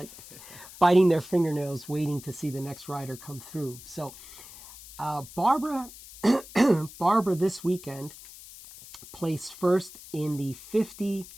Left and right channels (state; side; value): noise; left; hiss, 17 dB below the sound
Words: biting their fingernails waiting to see the next rider come through. So Barbara this weekend placed first in the 50